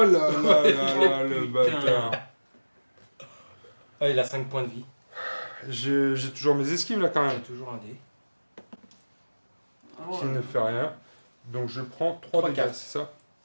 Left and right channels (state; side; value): inverted; both; correlation -1.00